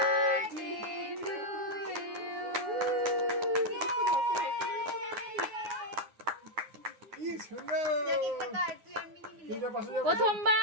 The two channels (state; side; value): late; left; 9.5 ms